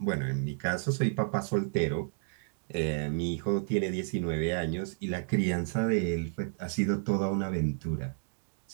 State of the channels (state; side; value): silent; left; digital silence